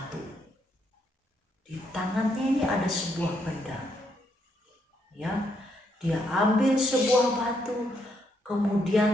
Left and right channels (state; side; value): normal; both; correlation 0.75